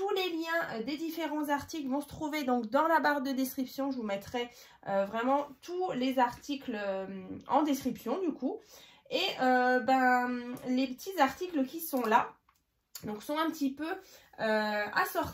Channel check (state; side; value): identical; both; correlation 1.00